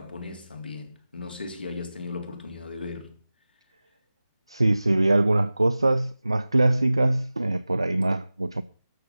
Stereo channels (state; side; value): inverted; both; correlation -0.97